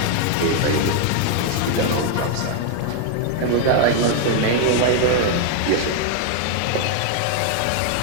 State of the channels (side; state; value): both; different; correlation 0.00